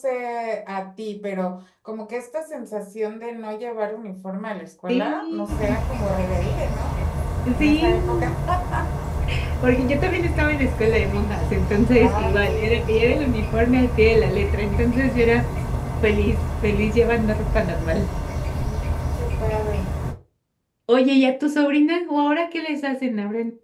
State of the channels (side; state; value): both; identical; correlation 1.00